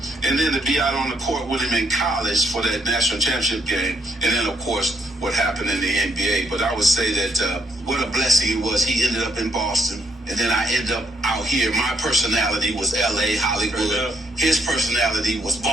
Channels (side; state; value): both; normal; correlation 0.73